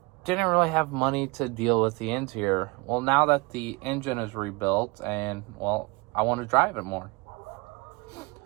didn't really have money to deal with the interior. Well, now that the engine is rebuilt and, well, I want to drive it more.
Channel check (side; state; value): left; quieter; 26.1 dB